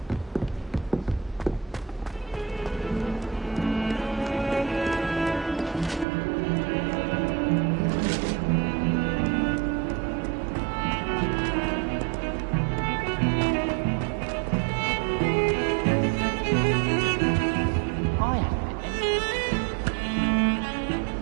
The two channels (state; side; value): drops out; left; at 6.1 s